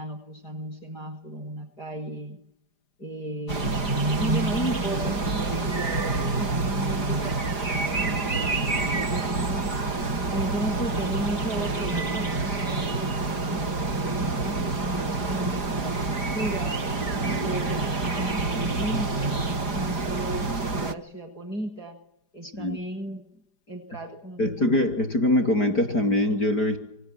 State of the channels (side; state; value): right; late; 4.9 ms